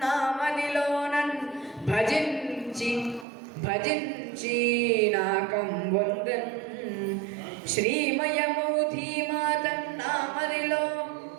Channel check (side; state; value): left; drops out; at 3.2 s